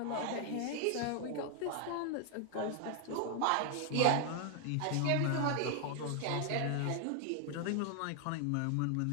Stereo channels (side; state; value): both; different; correlation 0.00